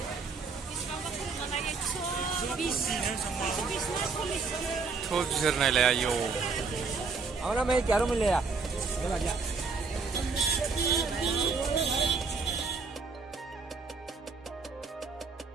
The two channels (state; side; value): quieter; left; 4.7 dB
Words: थ' बिसोर नायलाय आयौ आवना मैं क्या रो मिले या